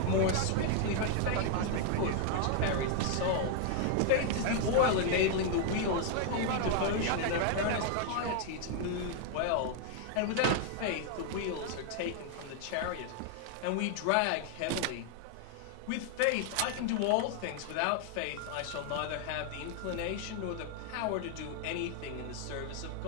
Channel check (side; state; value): both; different; correlation 0.00